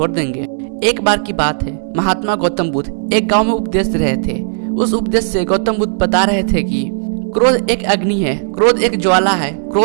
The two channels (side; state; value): left; silent; digital silence